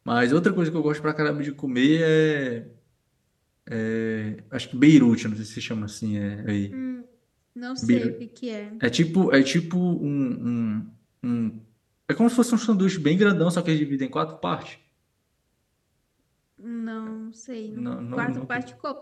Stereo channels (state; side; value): identical; both; correlation 1.00